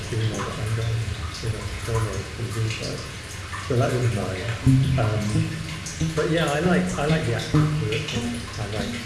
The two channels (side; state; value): both; identical; correlation 1.00